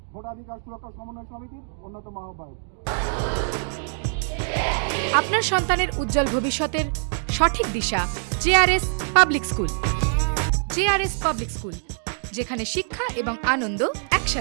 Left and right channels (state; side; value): silent; left; digital silence